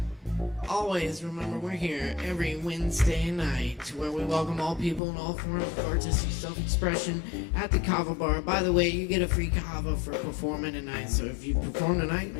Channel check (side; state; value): right; drops out; at 5.0 s